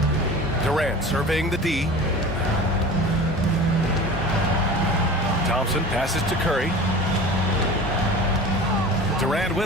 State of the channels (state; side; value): normal; both; correlation 0.37